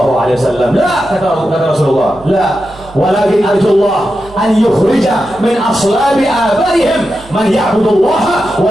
La, kata Rasulullah. La, walakin arjullah an yukhrija min aslabi abaihim man ya'budullaha wa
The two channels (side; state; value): right; noise; hum, 22 dB below the sound